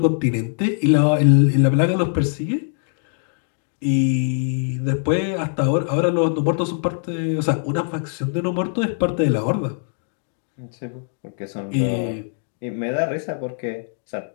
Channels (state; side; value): silent; right; digital silence